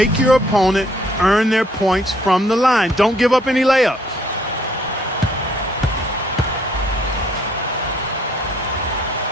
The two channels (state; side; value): normal; both; correlation 0.64